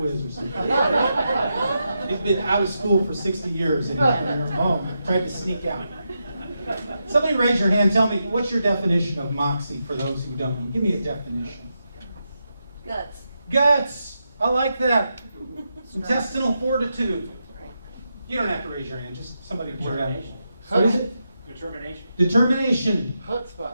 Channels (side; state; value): both; inverted; correlation -0.85